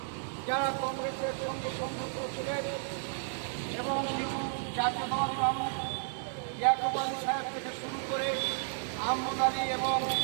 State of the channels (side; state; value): left; silent; digital silence